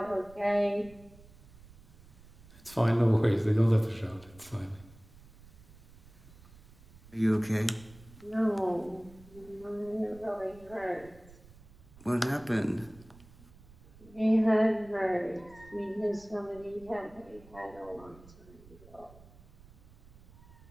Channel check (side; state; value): right; noise; rumble, 22 dB below the sound